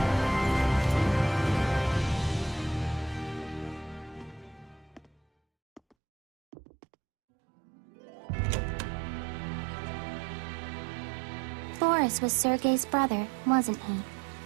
Boris was Sergei's brother, wasn't he?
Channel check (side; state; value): left; drops out; at 5.8 s